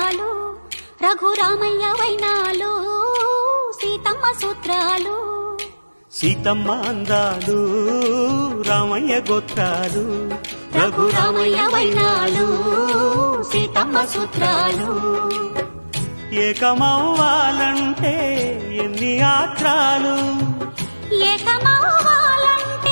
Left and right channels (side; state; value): both; inverted; correlation -1.00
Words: రఘురామయ్య వైనాలు సీతమ్మ సూత్రాలు. సీతమ్మ అందాలు రామయ్య గోత్రాలు రఘురామయ్య వైనాలు సీతమ్మ సూత్రాలు. ఏకమవ్వాలంటే ఎన్ని యాత్రాలు,